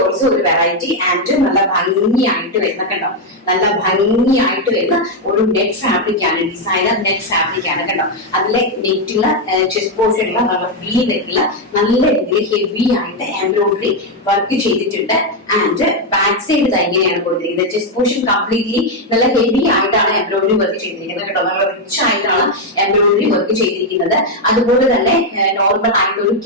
ഓൾസോ ഒരു വെറൈറ്റി ആൻഡ് നല്ല ഭംഗിയായിട്ട് വരുന്ന കണ്ടോ, നല്ല ഭംഗിയായിട്ട് വരുന്ന ഒരു നെറ്റ് ഫാബ്രിക് ആണ്, ഡിസൈനർ നെറ്റ് ഫാബ്രിക് ആണ് കണ്ടോ. അതിലെ നെറ്റുള്ള ചെസ്റ്റ് പോർഷനുള്ള നല്ല വി നെറ്റുള്ള നല്ല രീതിയിൽ ഹെവി ആയിട്ട് എംബ്രോയിഡറി വർക്ക് ചെയ്തിട്ടുണ്ട്. ആൻഡ് ബാക്ക് സൈഡ് ഇങ്ങനെയാണ് കൊടുത്തിരിക്കുന്നത്. ചെസ്റ്റ് പോർഷൻ കംപ്ലീറ്റ്ലി നല്ല ഹെവി ആയിട്ടാണ് എംബ്രോയിഡറി വർക്ക് ചെയ്തിരിക്കുന്നത് കേട്ടോ. നല്ല റിച്ച് ആയിട്ടാണ് എംബ്രോയിഡറി വർക്ക് ചെയ്തിരിക്കുന്നത്. അതുപോലെ തന്നെ നോർമൽ ആയിട്ട് ഒരു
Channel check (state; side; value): normal; both; correlation 0.02